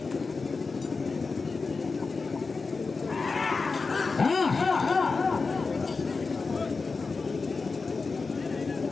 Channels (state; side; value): quieter; right; 4.3 dB